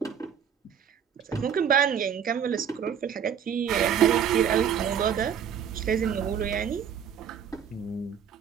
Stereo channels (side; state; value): left; quieter; 8.1 dB